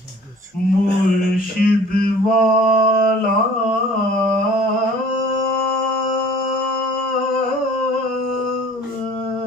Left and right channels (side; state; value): both; normal; correlation 0.49